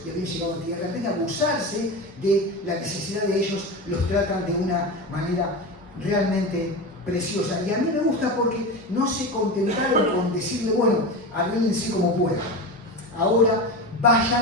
y habían llegado a tierra, en vez de abusarse de la necesidad de ellos, los tratan de una manera realmente preciosa. Y a mí me gusta porque no se contentaron con decirle, bueno, arréglense como puedan. Ahora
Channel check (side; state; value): both; normal; correlation 0.24